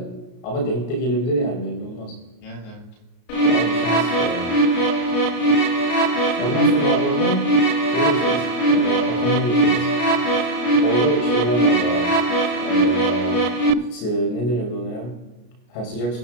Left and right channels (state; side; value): late; right; 33 ms